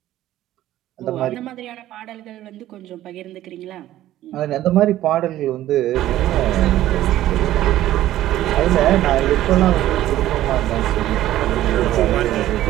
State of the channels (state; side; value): quieter; left; 13.9 dB